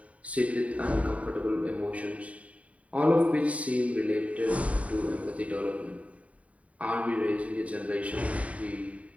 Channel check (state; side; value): late; left; 0.067 ms